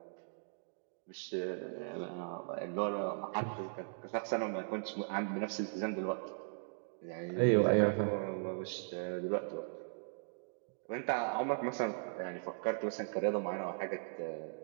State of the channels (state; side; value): silent; left; digital silence